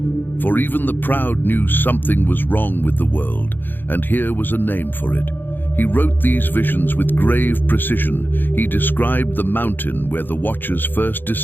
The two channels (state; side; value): late; right; 0.094 ms